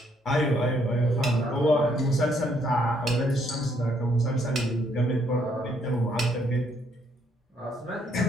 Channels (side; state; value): both; normal; correlation 0.70